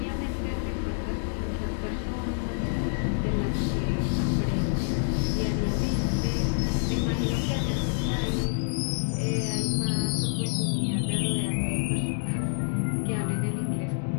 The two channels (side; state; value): right; silent; 60 dB below the other